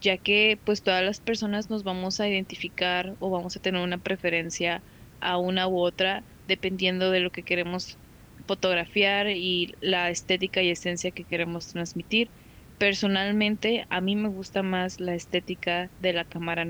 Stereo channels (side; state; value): both; identical; correlation 1.00